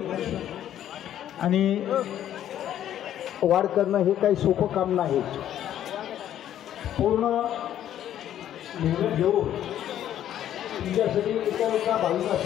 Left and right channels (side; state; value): right; quieter; 11.2 dB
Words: आणि वाढ करणं हे काही सोपं काम नाही. पूर्ण मेहनत घेऊन तुमच्यासाठी एका